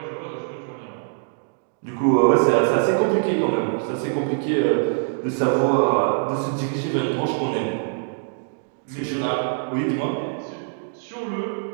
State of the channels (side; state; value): left; silent; digital silence